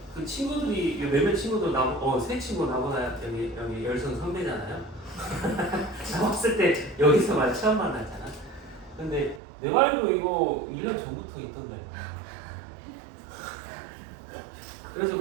그 친구들이 몇몇 친구들 세 친구 나보다 여기 열성 선배잖아요. 나왔을 때 여기서만 처음 만났잖아. 근데 내가 알고 이거 1년 전부터 있던데. 그래서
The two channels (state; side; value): drops out; left; at 9.4 s